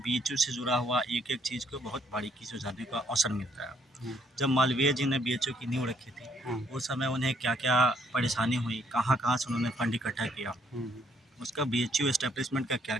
से जुड़ा हुआ एक-एक चीज़ को बहुत बारीकी से जानने का अवसर मिलता है। हुँ, जब मालवीय जी ने बीएचयू की नींव रखी थी, हुँ, उस समय उन्हें क्या-क्या परेशानी हुई, कहाँ-कहाँ से उन्होंने फंड इकट्ठा किया, हुँ, उसका बीएचयू एस्टेब्लिशमेंट का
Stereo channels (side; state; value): both; normal; correlation 0.68